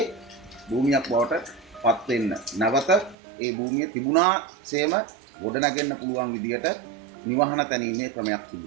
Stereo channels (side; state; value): left; drops out; at 3.2 s